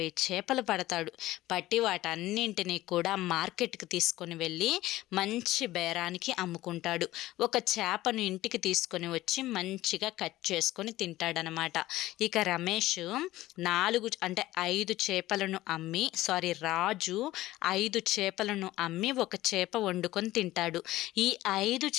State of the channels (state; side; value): quieter; right; 16.4 dB